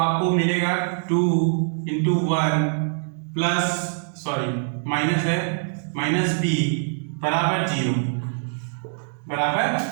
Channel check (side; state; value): left; silent; digital silence